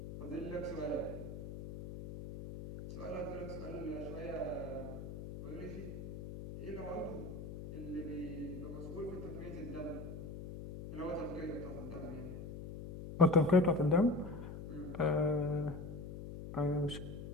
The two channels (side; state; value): left; noise; hum, 9 dB below the sound